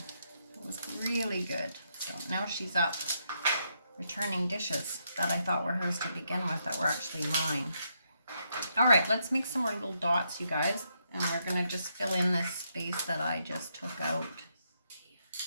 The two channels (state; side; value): inverted; both; correlation -0.78